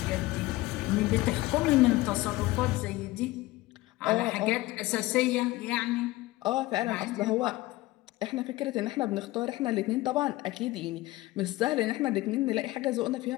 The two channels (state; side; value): quieter; right; 18.7 dB